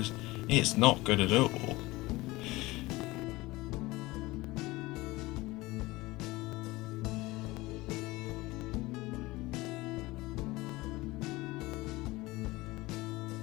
it's not good at all.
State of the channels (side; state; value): right; quieter; 20.5 dB